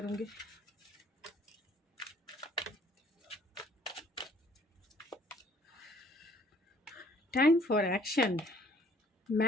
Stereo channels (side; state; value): both; normal; correlation 0.59